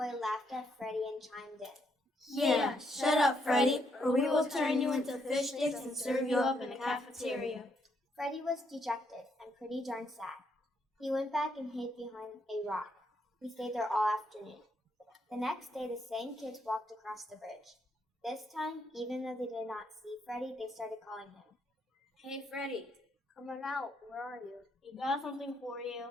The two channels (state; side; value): normal; both; correlation 0.75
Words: laughed at Freddy and chimed in. Yeah, shut up, Freddy, or we will turn you into fish sticks and serve you up in the cafeteria. Freddy was dejected and pretty darn sad. He went back and hid behind a rock. He stayed there all afternoon. The next day, the same kids walked across the bridge. This time, even though they did not see Freddy, they started calling him. Hey, Freddy. Come on out, where are you? We got something for you.